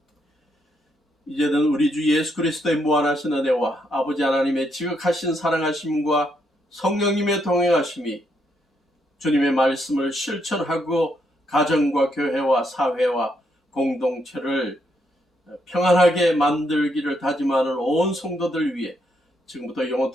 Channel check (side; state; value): both; normal; correlation 0.76